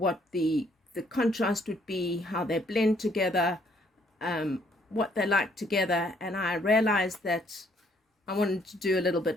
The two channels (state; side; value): normal; both; correlation 0.66